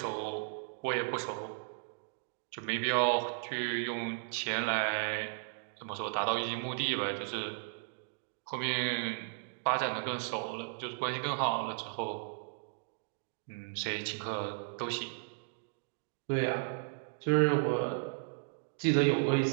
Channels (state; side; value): silent; left; digital silence